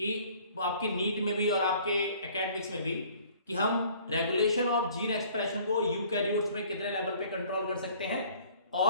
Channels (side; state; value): both; inverted; correlation -0.54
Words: आपके नीट में भी और आपके एकेडमिक्स में भी कि हम रेगुलेशन ऑफ जीन एक्सप्रेशन को यूकैरियोट्स में कितने लेवल पे कंट्रोल कर सकते हैं